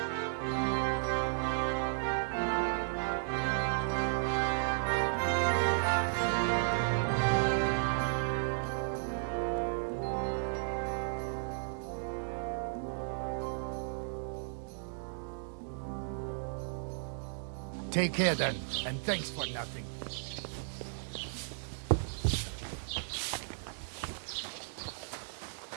Take care then, and thanks for nothing.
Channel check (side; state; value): left; silent; digital silence